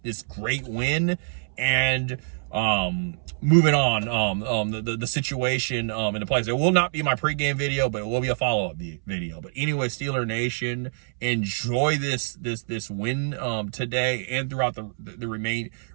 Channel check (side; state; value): left; silent; 61 dB below the other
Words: this great win. And moving on, the situation in the place. It will not be my pregame video, but it will be a follow-up video. But anyway, Steeler Nation, enjoy this win today and throughout the